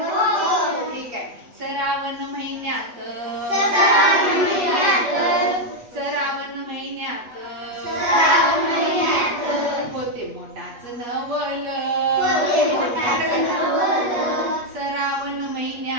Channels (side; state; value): left; late; 8.3 ms